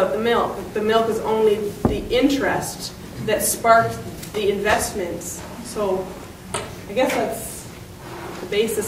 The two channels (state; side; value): identical; both; correlation 1.00